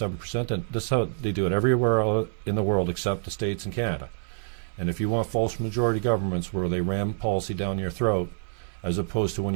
then this is how they do it everywhere in the world except the States and Canada. And if you want false majority governments where they ram policy down your throat, as opposed to when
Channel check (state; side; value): silent; left; digital silence